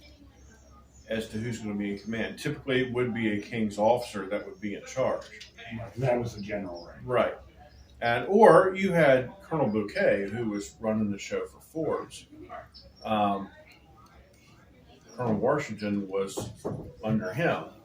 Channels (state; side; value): identical; both; correlation 1.00